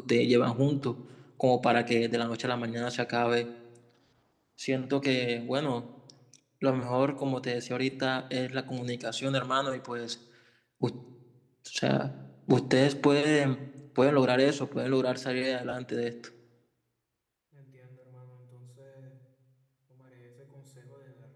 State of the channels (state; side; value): identical; both; correlation 1.00